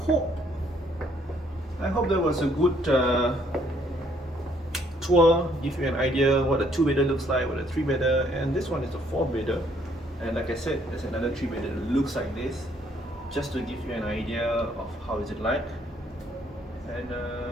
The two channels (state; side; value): normal; both; correlation 0.66